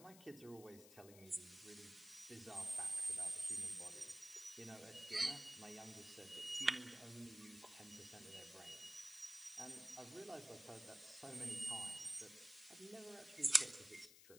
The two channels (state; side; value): noise; left; hiss, 17 dB below the sound